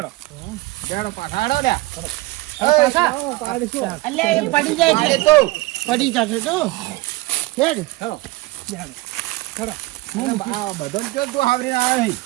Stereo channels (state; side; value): quieter; left; 20.3 dB